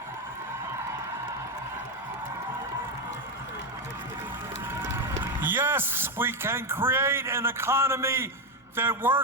Yes, we can create an economy that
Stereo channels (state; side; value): normal; both; correlation 0.09